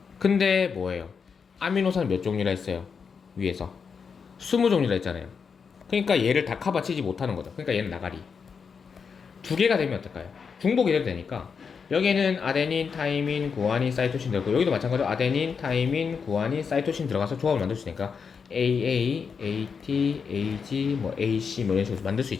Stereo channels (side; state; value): right; quieter; 5.9 dB